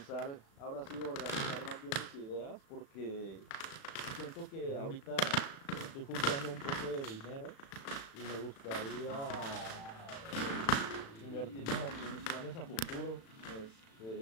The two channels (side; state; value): right; late; 36 ms